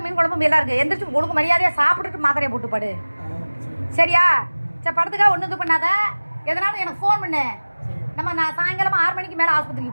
மீன் குழம்பு எல்லாம் இருக்குது. எந்திரிச்சு ஒழுங்கு மரியாதையாக சாப்பிட்டுட்டு மாத்திரையை போட்டு படு. சரியா? சரி, படத்துக்காக ஒன்றும் இது பண்ணாத. எதனாலும் எனக்கு ஃபோன் பண்ணு. நான் சாயங்காலம் 6 மணிக்கு மேலே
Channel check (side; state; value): both; inverted; correlation -1.00